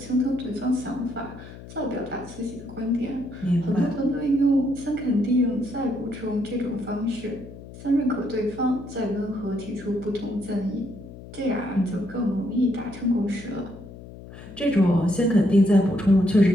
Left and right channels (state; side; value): noise; left; hum, 16 dB below the sound